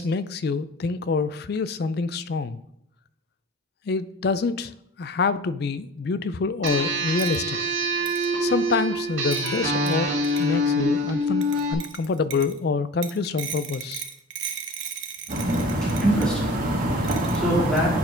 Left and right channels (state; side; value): normal; both; correlation 0.38